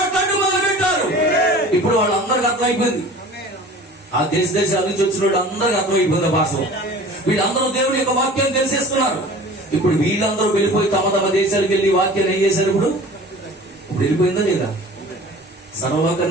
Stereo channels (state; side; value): normal; both; correlation 0.42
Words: మొదలు పెట్టారు. ఇప్పుడు వాళ్ళందరికీ అర్థమైపోయింది. ఆ దేశాల నుంచి వచ్చిన వాళ్ళు అందరికీ అర్థమైపోయింది భాష. వీళ్ళందరూ దేవుడి యొక్క వాక్యాన్ని తెలిసేస్తున్నారు. ఇప్పుడు వీళ్ళందరూ వెళ్ళిపోయి తమ తమ దేశాలకు వెళ్ళి వాక్యాన్ని ఏం చేశారు? ఇప్పుడు వెళ్ళిపోయిందా లేదా?